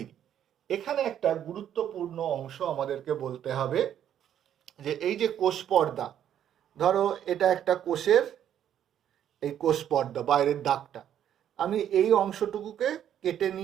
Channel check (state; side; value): quieter; left; 10.1 dB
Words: এখানে একটা গুরুত্বপূর্ণ অংশ আমাদেরকে বলতে হবে, যে এই যে কোষ পর্দা, ধরো এটা একটা কোষের এই কোষ পর্দা, বাইরের দাগটা, আমি এই অংশটুকুকে কেটে